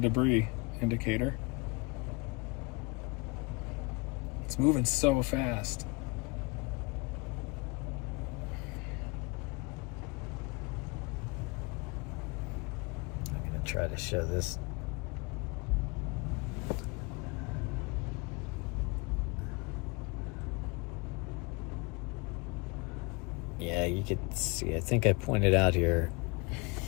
indicator. It's moving so fast. I'm going to try to show this. Yeah, you could see, I think I pointed out here.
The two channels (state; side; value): quieter; right; 27.7 dB